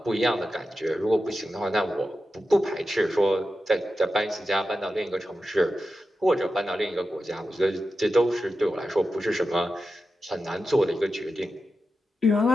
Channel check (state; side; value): normal; both; correlation 0.91